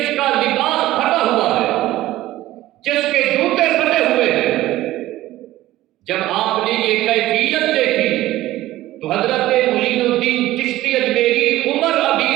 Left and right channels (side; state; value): left; quieter; 15.8 dB